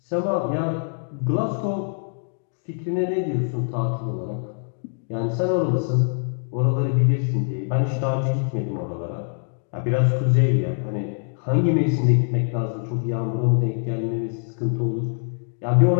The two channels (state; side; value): silent; right; digital silence